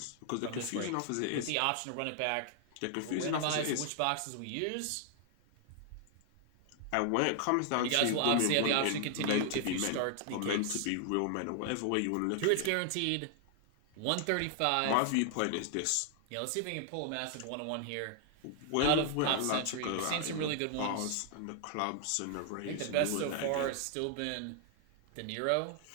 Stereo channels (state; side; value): different; both; correlation 0.00